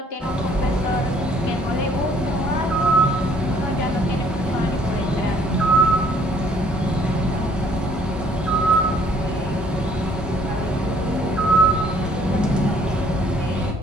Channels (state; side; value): normal; both; correlation 0.61